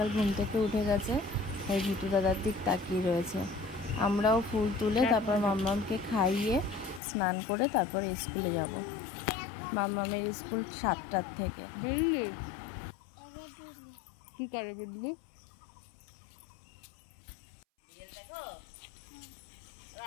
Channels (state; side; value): drops out; right; at 7.0 s